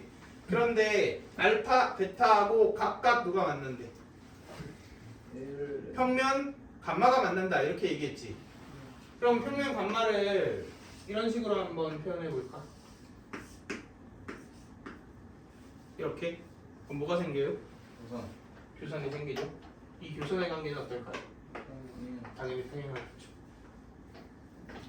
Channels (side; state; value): both; identical; correlation 1.00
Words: 그런데 알파 베타하고 각각 누가 만난대? 평면 감마가 만난다 이렇게 얘기했지. 그럼 평면 감마를 이런 식으로 한번 표현해 볼까? 이렇게. 그럼 뭐가 생겨요? 우선 교선이 생기죠. 이 교선의 관계는 어떨까요? 당연히 평행하겠죠.